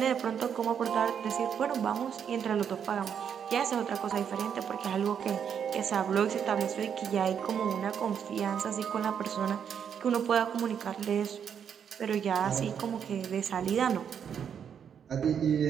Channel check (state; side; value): quieter; left; 7.9 dB